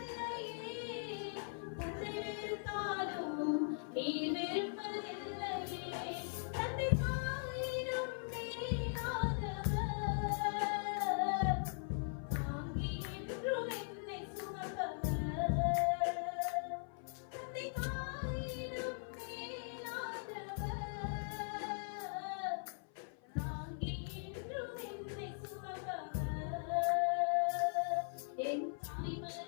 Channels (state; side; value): silent; right; 51 dB below the other